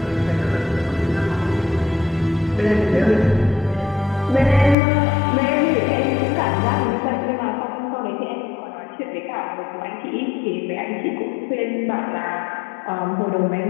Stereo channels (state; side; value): drops out; right; at 4.8 s